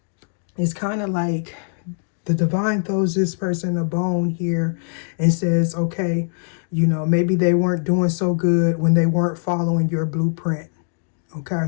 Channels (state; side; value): silent; right; digital silence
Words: it's kind of like the divine throws this person a bone here and says, okay, maybe they weren't doing so good when they weren't following your blueprint.